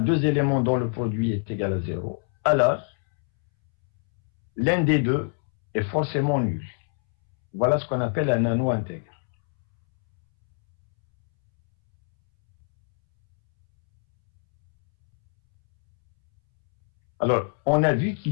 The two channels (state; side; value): silent; right; 63 dB below the other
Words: éléments dont le produit est égal à 0, alors l'un des deux est forcément nul. Voilà ce qu'on appelle un anneau intègre. Alors, on a vu